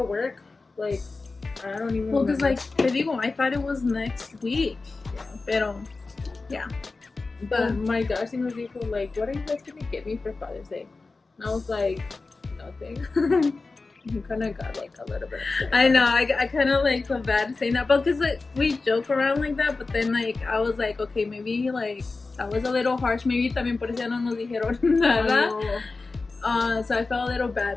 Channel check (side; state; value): right; quieter; 3.8 dB